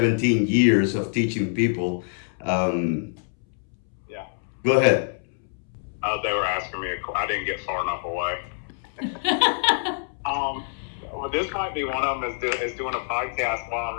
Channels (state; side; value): silent; right; 61 dB below the other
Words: years of teaching people. Yeah. Go ahead. They were asking me, I didn't get far enough away. Well, this might be one of them is doing a podcast while I'm